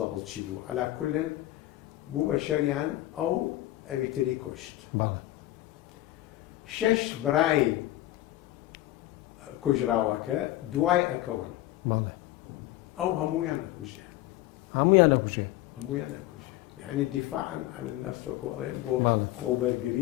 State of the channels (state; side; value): quieter; right; 15.8 dB